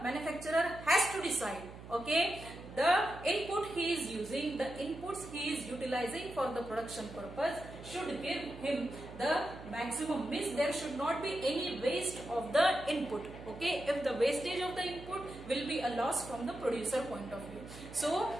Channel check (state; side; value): noise; right; hum, 14 dB below the sound